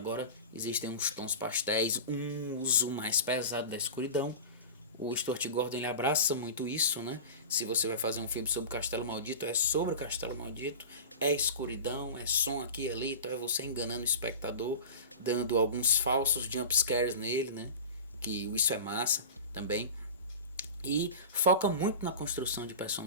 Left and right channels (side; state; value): both; inverted; correlation -0.31